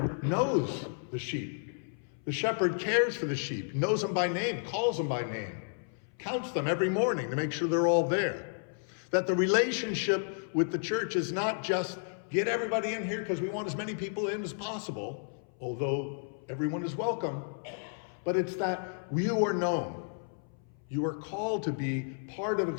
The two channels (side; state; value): right; silent; 56 dB below the other